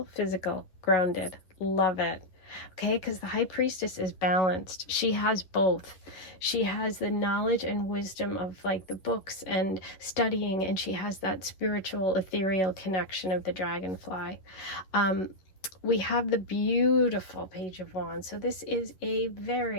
physical, grounded. Love it. Okay, because the High Priestess is balanced. She has both. She has the knowledge and wisdom of like the books and studying, and she has that spiritual, ethereal connection of the dragonfly. We have the beautiful Page of Wands. So this is a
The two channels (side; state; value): right; late; 11 ms